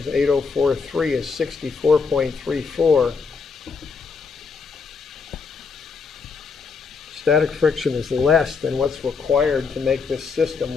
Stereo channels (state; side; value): quieter; right; 5.1 dB